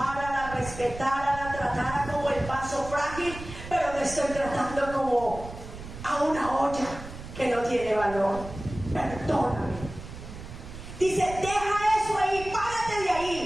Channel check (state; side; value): noise; right; rumble, 12 dB below the sound